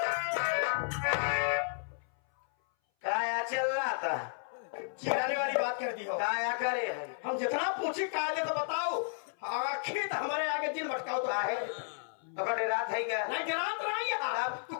क्या चल रहा था? चिढ़ाने वाली बात कर दी हो। क्या करे है? हम जितना पूछे कायदे तो बताओ, आखिर तो हमारे आगे दिन भटकाओ तो है। पकड़े रात है क्या? नहीं गिरात रही है। तू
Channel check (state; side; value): silent; right; 56 dB below the other